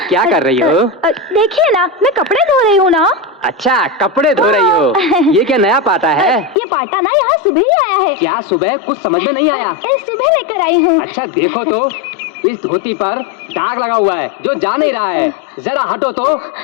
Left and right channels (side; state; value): right; drops out; at 6.6 s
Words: क्या कर रही हो? देखिए ना, मैं कपड़े धो रही हूँ ना। अच्छा, कपड़े धो रही हो। ये क्या नया पाटा है? ये पाटा ना यहाँ सुबह ही आया है। क्या सुबह? कुछ समझ में नहीं आया। सुबह लेकर आई हूँ। अच्छा देखो तो, इस धोती पर दाग लगा हुआ है जो जा नहीं रहा है। जरा हटो तो,